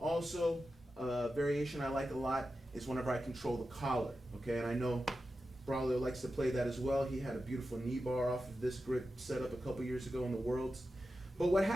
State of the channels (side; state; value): both; normal; correlation 0.91